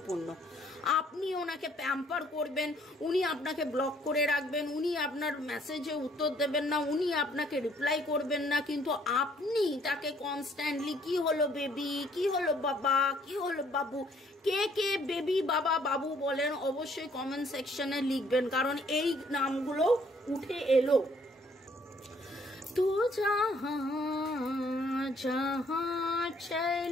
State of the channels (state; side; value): normal; both; correlation 0.63